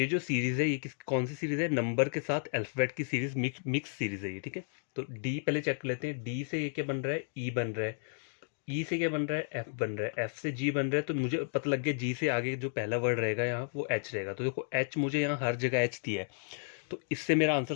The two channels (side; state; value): right; silent; digital silence